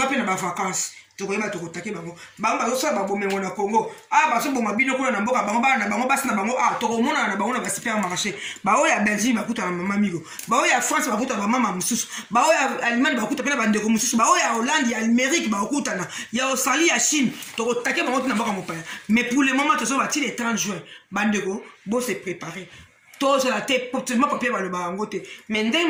na ba vacances tu koyeba tu kotake bango bazosala babomengo na Congo baso boma bino kuna na mboka bango bana na bango basi na bango tokomona na bango na ba supermarché baoyo ya Belgique bakuta na mama migo baoyo ya France bakuta ba mama mususu baoyo ya Allemagne bakuta pe na bandeko mususu baoyo ya Hollande ya Amérique bakuta na ya Australie ya Chine tokotake bango na mboka mopaya mais pour le moment tozo bati le 30 juin bandeko bo se préparer tous la tête potentiellement papier ba le bango te mais ndenge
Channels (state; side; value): identical; both; correlation 1.00